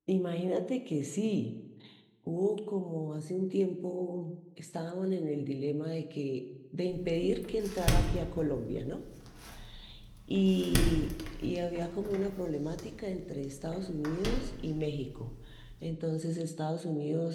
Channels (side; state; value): both; identical; correlation 1.00